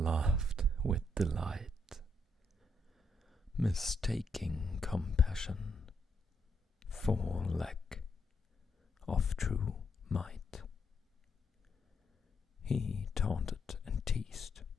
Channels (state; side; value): normal; both; correlation 0.78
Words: with delight, mistaking compassion for lack of true might. He taunted and teased,